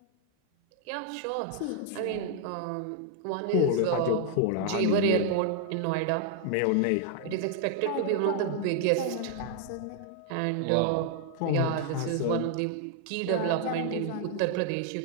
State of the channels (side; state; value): both; different; correlation 0.00